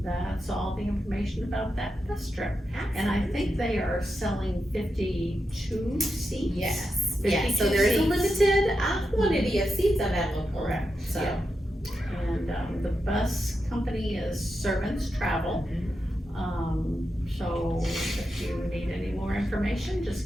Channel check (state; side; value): normal; both; correlation 0.87